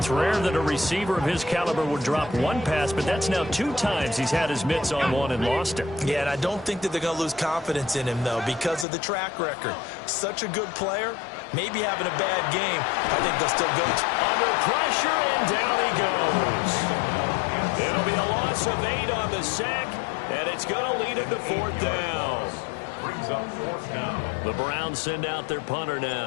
rare that a receiver of his caliber would drop one pass, but that's now 2 times he's had his mitts on one and lost it. Yeah, and I don't think that they're going to lose confidence in him, though, because of the track record. Such a good player, maybe having a bad game. I think they'll still go under pressure, and down he goes. It'll be a loss of 8 on the sack, and it's going to lead him to 4th down. Brings up 4th down. The Browns send out their punter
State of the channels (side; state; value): right; drops out; at 8.8 s